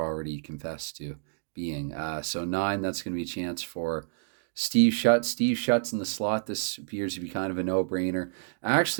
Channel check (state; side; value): silent; left; digital silence